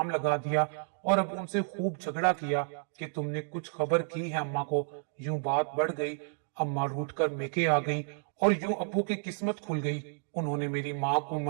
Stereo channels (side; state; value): left; silent; digital silence